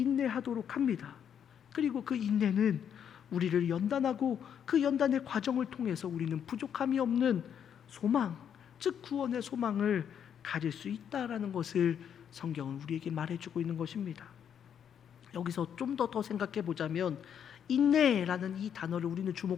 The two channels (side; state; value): right; quieter; 8.5 dB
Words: 합니다. 그리고 그 인내는 우리를 연단하고 그 연단의 과정을 통해서 우리는 부족함이 없는 소망, 즉 구원의 소망을 가질 수 있다라는 것을 성경은 우리에게 말해주고 있는 것입니다. 여기서 좀 더 생각해 보자면 인내라는 이 단어를 우리는